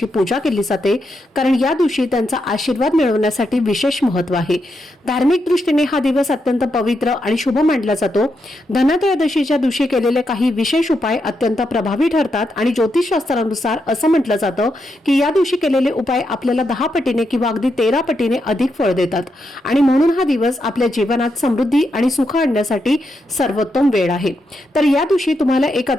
पूजा केली जाते, कारण या दिवशी त्यांचा आशीर्वाद मिळवण्यासाठी विशेष महत्त्व आहे। धार्मिक दृष्टीने हा दिवस अत्यंत पवित्र आणि शुभ मानला जातो। धनत्रयोदशीच्या दिवशी केलेले काही विशेष उपाय अत्यंत प्रभावी ठरतात आणि ज्योतिषशास्त्रानुसार असं म्हटलं जातं की या दिवशी केलेले उपाय आपल्याला 10 पटीने किंवा अगदी 13 पटीने अधिक फळ देतात आणि म्हणून हा दिवस आपल्या जीवनात समृद्धी आणि सुख आणण्यासाठी सर्वोत्तम वेळ आहे। तर या दिवशी तुम्हाला एक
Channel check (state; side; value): normal; both; correlation 0.83